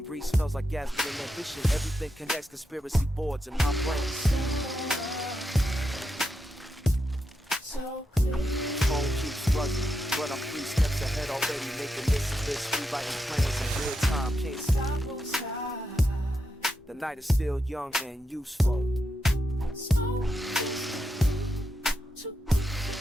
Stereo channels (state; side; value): normal; both; correlation 0.85